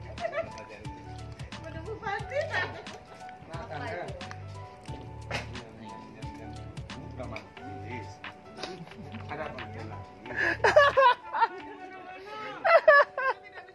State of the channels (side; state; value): both; identical; correlation 1.00